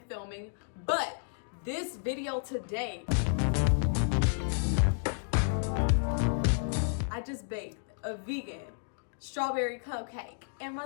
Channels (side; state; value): right; silent; digital silence